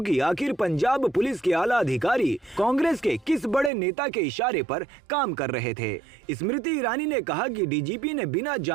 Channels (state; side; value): drops out; left; at 3.7 s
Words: कि आखिर पंजाब पुलिस के आला अधिकारी कांग्रेस के किस बड़े नेता के इशारे पर काम कर रहे थे। स्मृति ईरानी ने कहा कि डीजीपी ने बिना